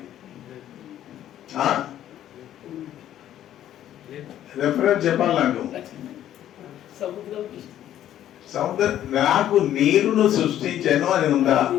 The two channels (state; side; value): quieter; right; 11.7 dB